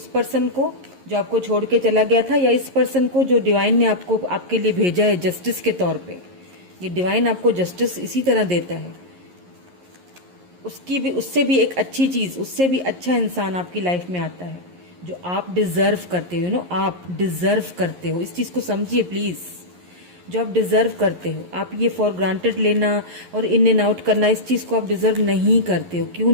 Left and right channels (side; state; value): left; late; 11 ms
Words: पर्सन को जो आपको छोड़ के चला गया था, या इस पर्सन को जो डिवाइन ने आपके लिए भेजा है जस्टिस के तौर पे। ये डिवाइन आपको जस्टिस इसी तरह देता है। उससे भी एक अच्छी चीज़, उससे भी अच्छा इंसान आपकी लाइफ में आता है जो आप डिजर्व करते हो। आप डिजर्व करते हो, इस चीज़ को समझिए प्लीज़। जो आप डिजर्व करते हो, आप ये फॉर ग्रांटेड लेना और इन एंड आउट करना, इस चीज़ को आप डिजर्व नहीं करते हो। क्यों